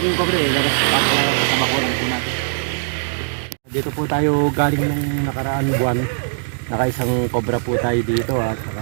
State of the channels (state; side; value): silent; left; digital silence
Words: yung cobra eh. Labas pasok lang po sa bakuran po natin. Dito po tayo galing nung nakaraan buwan. Nakaisang cobra po tayo dito at